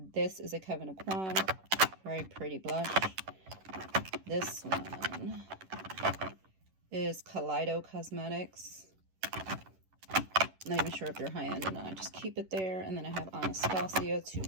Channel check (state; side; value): late; left; 11 ms